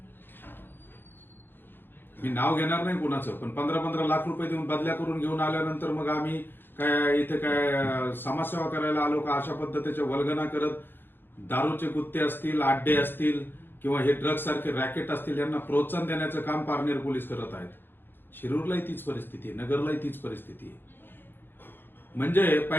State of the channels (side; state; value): right; late; 0.10 ms